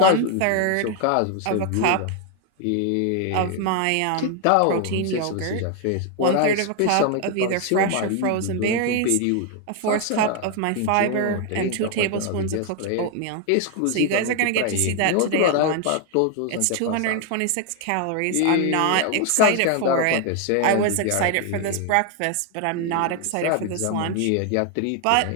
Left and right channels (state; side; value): different; both; correlation 0.01